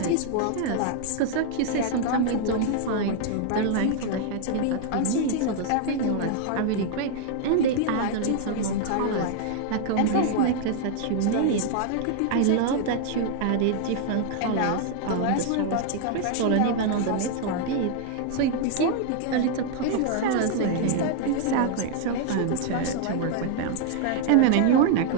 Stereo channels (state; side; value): different; both; correlation 0.00